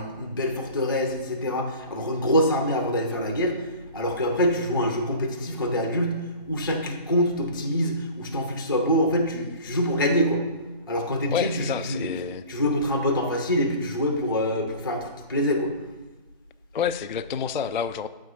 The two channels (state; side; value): inverted; both; correlation -0.39